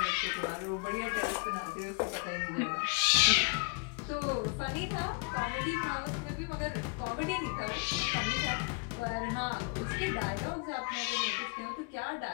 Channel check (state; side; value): quieter; right; 35.4 dB